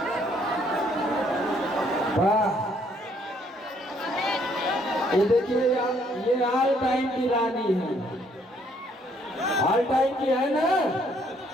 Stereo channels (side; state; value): both; normal; correlation 0.67